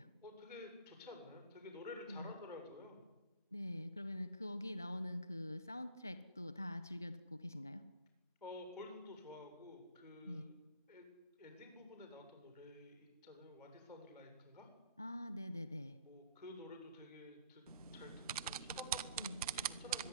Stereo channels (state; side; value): inverted; both; correlation -0.53